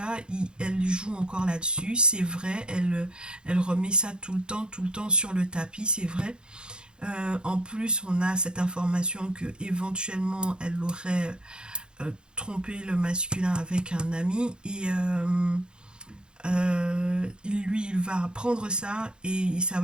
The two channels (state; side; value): late; left; 0.049 ms